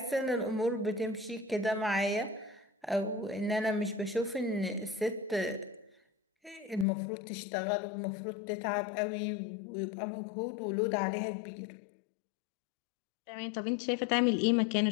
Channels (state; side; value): drops out; right; at 6.9 s